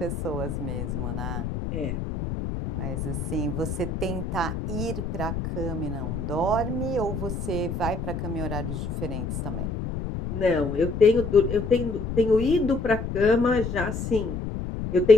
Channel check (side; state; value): left; noise; rumble, 4 dB below the sound